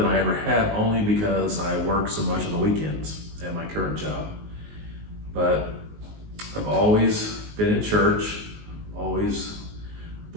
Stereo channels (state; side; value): late; left; 19 ms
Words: I ever have, only because I work so much on the weekends at my current job. But I've always been in church, always